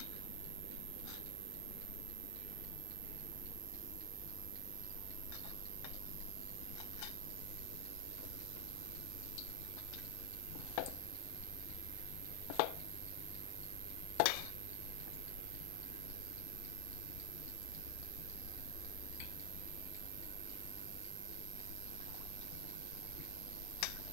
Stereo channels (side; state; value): both; different; correlation 0.00